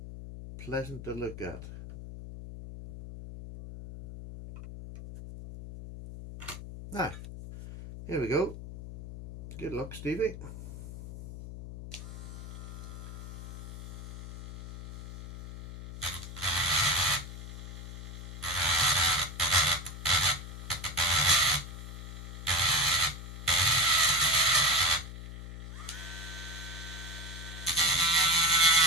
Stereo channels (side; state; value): left; noise; hum, 11 dB below the sound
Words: pleasant to look at. Now, here we go. Good luck, Stevie.